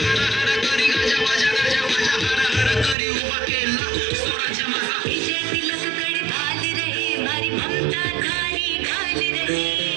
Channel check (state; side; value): drops out; left; at 3.0 s